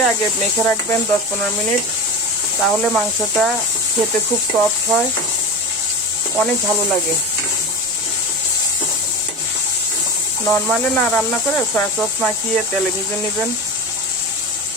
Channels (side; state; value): both; normal; correlation 0.26